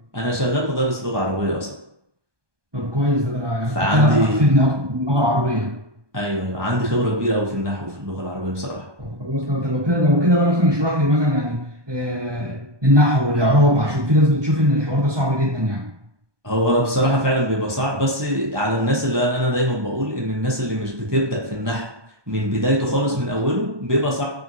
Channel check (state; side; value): late; left; 1.2 ms